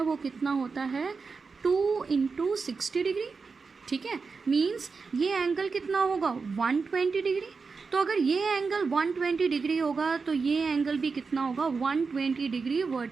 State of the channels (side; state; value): left; quieter; 4.8 dB